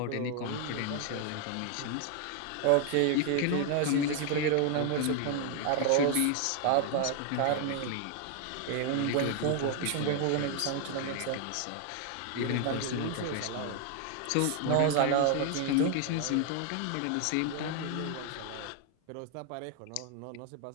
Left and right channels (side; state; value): both; different; correlation 0.00